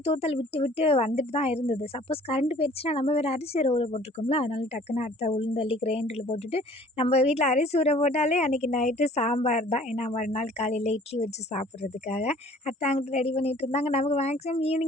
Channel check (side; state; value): both; normal; correlation 0.52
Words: தூத்தல் விட்டு விட்டு வந்துட்டு தான் இருந்தது. சப்போஸ் கரண்ட் போயிருச்சுன்னா நம்ம வேற அரிசி ஊற போட்டுருக்கோம்ல, அதனால டக்குன்னு அத்தை உளுந்தள்ளி கிரைண்டர்ல போட்டுட்டு, நம்ம வீட்ல அரிசி ஊற போட்டாலே அன்னைக்கு நைட்டு சாம்பார் தான். ஏன்னா மறுநாள் காலையில இட்லி வச்சு சாப்பிட்றதுக்காக. அத்தை அங்கிட்டு ரெடி பண்ணிட்டு இருந்தாங்க. நமக்கு மேக்ஸிமம்